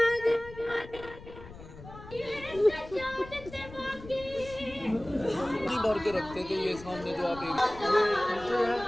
بھر کے رکھتے تھے یہ سامنے جو آپ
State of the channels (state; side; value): noise; left; rumble, 16 dB below the sound